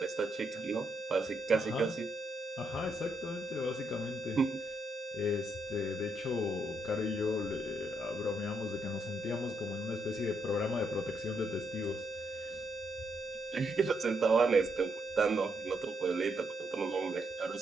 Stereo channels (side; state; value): both; normal; correlation 0.78